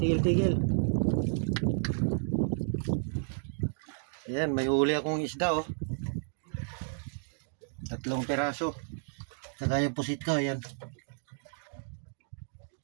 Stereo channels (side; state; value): left; silent; digital silence